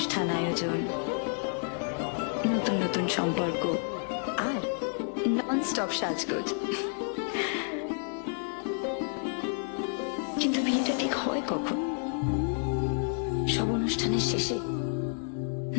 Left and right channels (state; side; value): silent; right; 58 dB below the other